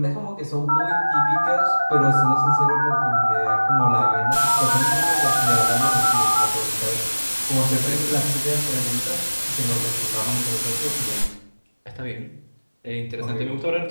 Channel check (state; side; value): inverted; both; correlation -1.00